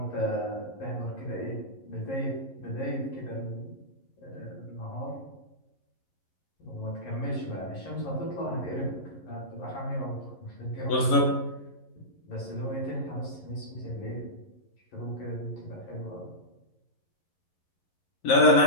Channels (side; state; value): right; late; 11 ms